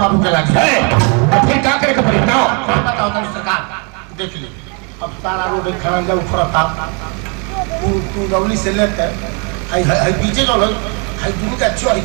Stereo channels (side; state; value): left; quieter; 35.4 dB